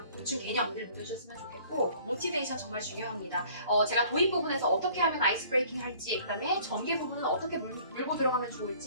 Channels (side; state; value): both; inverted; correlation -0.53